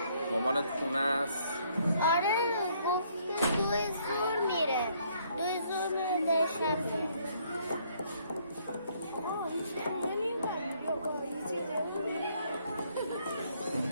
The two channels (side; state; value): both; inverted; correlation -0.67